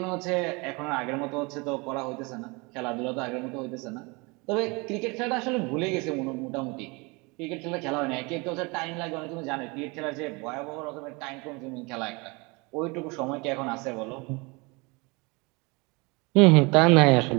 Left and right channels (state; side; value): quieter; left; 27.3 dB